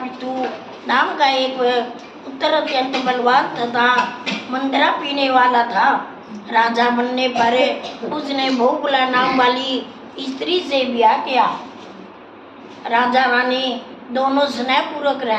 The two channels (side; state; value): both; identical; correlation 1.00